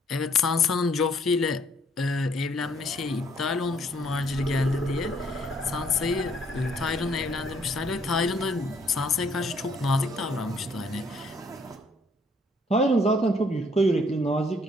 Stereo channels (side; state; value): both; normal; correlation 0.65